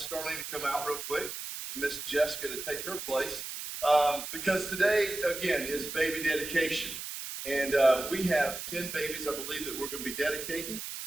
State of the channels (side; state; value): right; noise; hiss, 7 dB below the sound